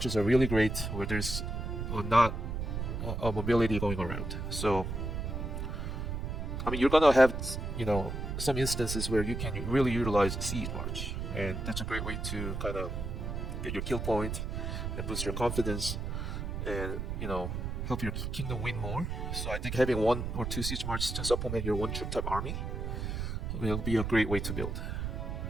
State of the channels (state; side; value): noise; right; rumble, 3 dB below the sound